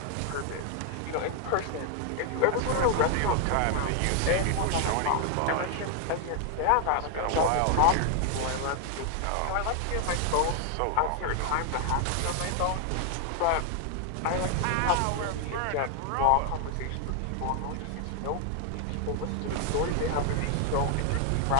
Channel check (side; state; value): both; different; correlation 0.00